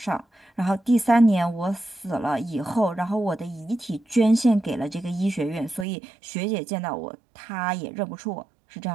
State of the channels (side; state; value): left; drops out; at 5.9 s